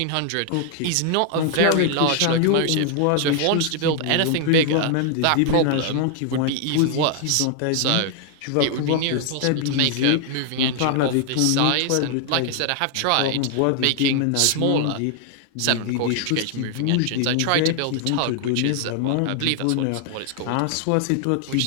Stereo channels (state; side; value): different; both; correlation 0.00